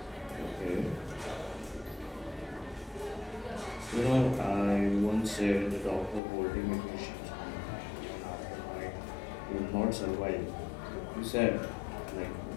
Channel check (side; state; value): right; drops out; at 6.2 s